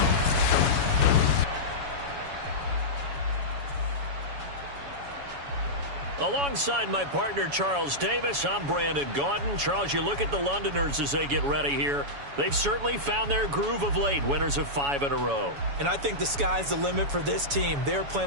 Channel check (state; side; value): late; left; 7.1 ms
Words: Alongside my partner, Charles Davis, I'm Brandon Gaudin. Charles, you look at the Londoners as they get ready here. They've certainly found their groove of late, winners of 5 in a row. And I think the sky's the limit for this team. They're